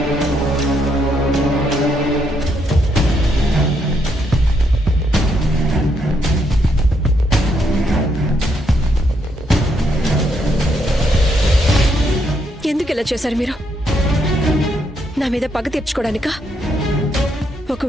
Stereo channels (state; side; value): normal; both; correlation 0.76